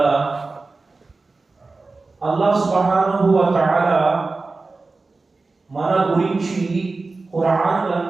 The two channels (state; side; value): quieter; left; 3.7 dB